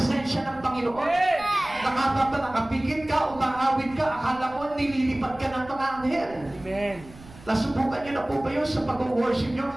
ng Panginoon. Nakapigil ka, umaawit ka, akala mo nililipat ka ng mga anghel. Amen. Nasubukan niyo na po ba yun sa pag-worship niyo?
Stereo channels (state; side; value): noise; right; rumble, 20 dB below the sound